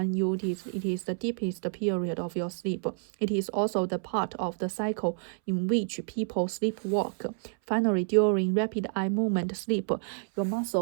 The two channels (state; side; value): silent; left; 59 dB below the other